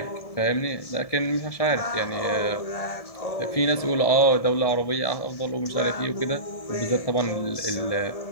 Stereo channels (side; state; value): right; late; 1.7 ms